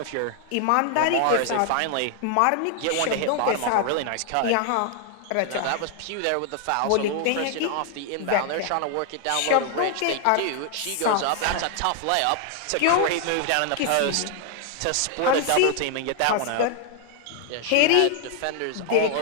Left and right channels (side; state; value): both; different; correlation 0.00